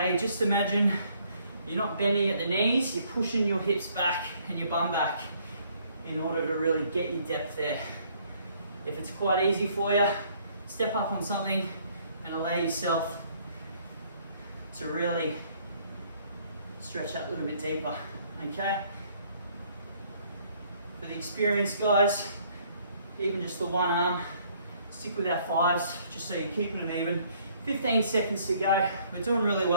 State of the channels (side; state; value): both; inverted; correlation -0.63